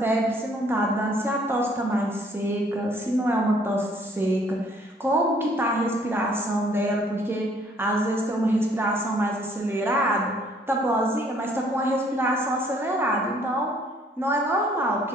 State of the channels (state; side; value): normal; both; correlation 0.61